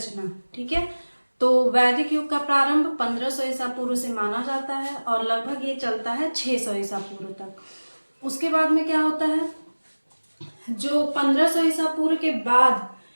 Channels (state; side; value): inverted; both; correlation -1.00